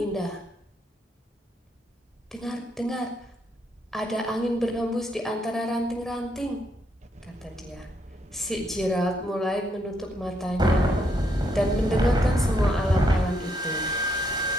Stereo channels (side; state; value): both; normal; correlation 0.75